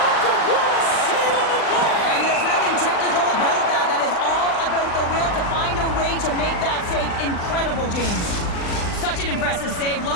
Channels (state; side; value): late; right; 39 ms